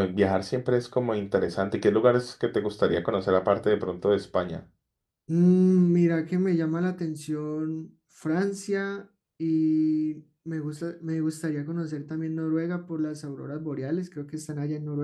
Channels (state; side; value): identical; both; correlation 1.00